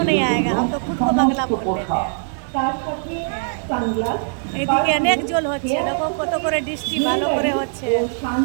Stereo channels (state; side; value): silent; left; 65 dB below the other